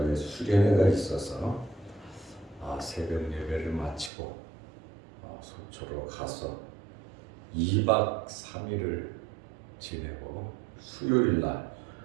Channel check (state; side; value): drops out; left; at 4.1 s